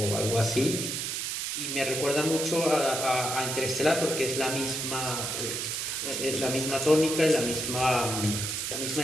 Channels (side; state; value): right; noise; hiss, 2 dB below the sound